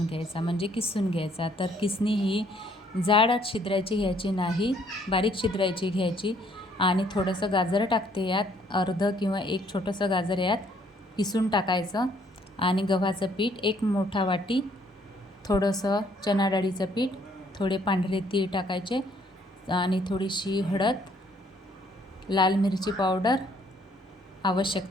घ्यायचा, म्हणजे किसून घ्यायचा. तर किसणी ही जाड छिद्रायची घ्यायची नाही, बारीक छिद्रायची घ्यायची. आणि थोडंसं गाजर टाकते यात, अर्ध किंवा एक छोटंसं गाजर यात किसून टाकायचं. आणि गव्हाचं पीठ एक मोठा वाटी, थोडंसं चणा डाळीचं पीठ, थोडे पांढरे तीळ टाकायचे आणि थोडीशी हळद, लाल मिरची पावडर,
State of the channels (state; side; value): normal; both; correlation 0.65